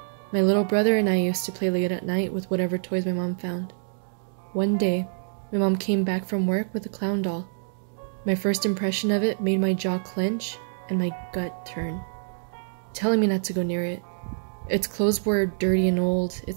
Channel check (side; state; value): left; silent; digital silence